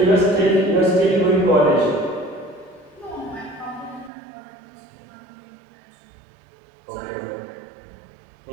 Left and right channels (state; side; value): drops out; left; at 4.1 s